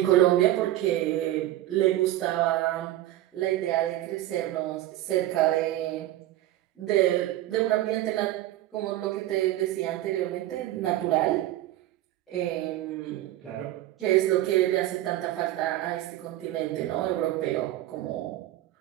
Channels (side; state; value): left; quieter; 14.7 dB